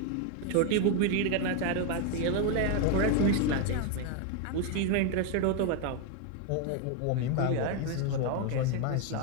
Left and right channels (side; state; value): both; different; correlation 0.01